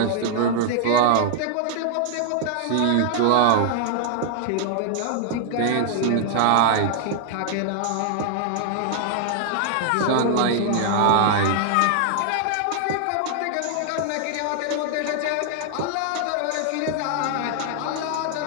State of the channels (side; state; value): both; different; correlation -0.01